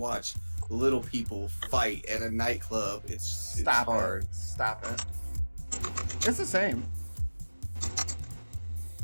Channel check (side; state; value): both; inverted; correlation -1.00